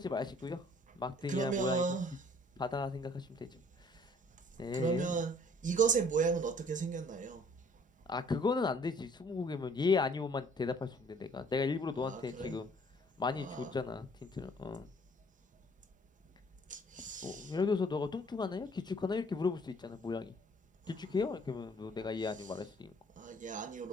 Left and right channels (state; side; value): normal; both; correlation 0.58